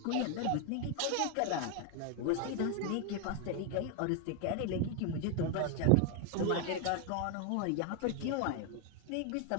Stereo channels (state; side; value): different; both; correlation 0.01